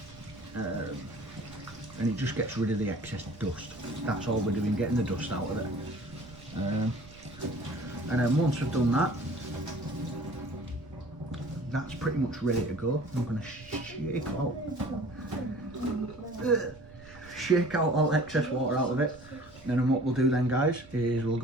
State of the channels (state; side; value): noise; right; rumble, 22 dB below the sound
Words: and it just gets rid of the excess dust. That's all we're doing, getting the dust out of it. And then once we've done that, that's pretty much ready to go. I'm going to shake out all excess water out of it. And then what we'll do then, guys, is we'll